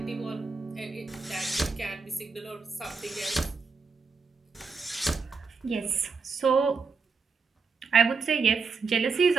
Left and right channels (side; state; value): left; quieter; 4.8 dB